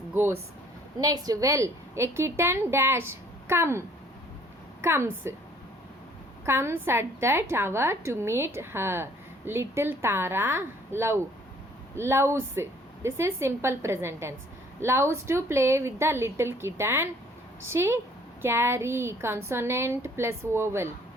Goes. Next, well, a kitten dash comes at that hour to meet her. Little Tara loves. This is simple present tense. Loves to play with the little kitten. She carry, consonant plus vowel.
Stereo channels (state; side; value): normal; both; correlation 0.58